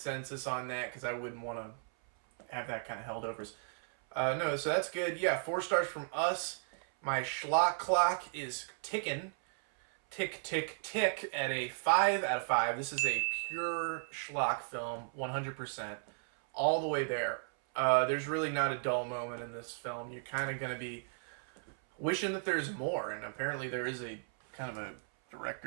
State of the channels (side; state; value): left; silent; 54 dB below the other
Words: on that, because I wouldn't want to have that kind of held over us. No, so that's good. Yeah, 4 stars from us. My Schlock clock is ticking. Tick, tick, tick at a 5 out of 5. This is a pure Schlock film, 100%. All the way there. There's really not a dull moment in this film. You're kind of going to be wishing that there's more, and apparently there is a kind of a